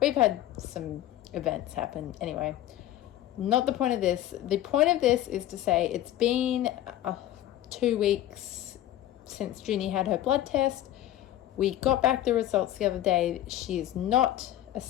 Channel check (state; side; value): quieter; right; 13.1 dB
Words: we've had some events happen. Anyway, not the point of this. The point of this is to say it's been 2 weeks since Junie had her blood test. We got back the results the other day. She is not a